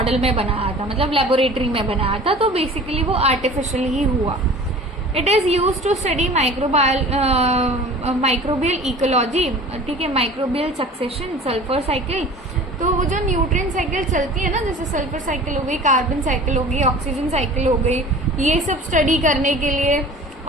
में बनाया था, मतलब लेबोरेटरी में बनाया था। तो बेसिकली वो आर्टिफिशियल ही हुआ। It is use to study microbial ecology, ठीक है, माइक्रोबियल सक्सेशन, सल्फर साइकिल। तो वो जो न्यूट्रिएंट साइकिल चलती है ना, जैसे सल्फर साइकिल हो गई, कार्बन साइकिल हो गई, ऑक्सीजन साइकिल हो गई, ये सब स्टडी करने के लिए।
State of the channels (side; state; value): both; normal; correlation 0.42